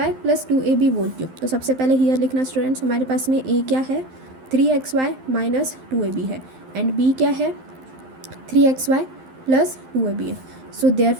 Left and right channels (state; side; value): late; left; 12 ms